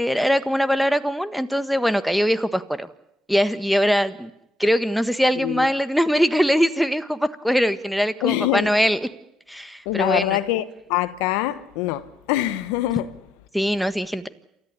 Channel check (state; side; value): normal; both; correlation 0.80